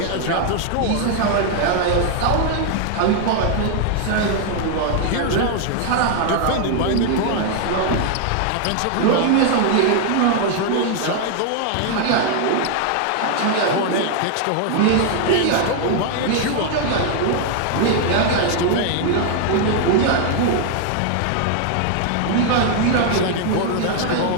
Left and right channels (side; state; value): both; different; correlation 0.00